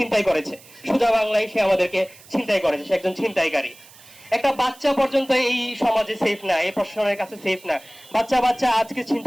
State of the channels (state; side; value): noise; right; hiss, 23 dB below the sound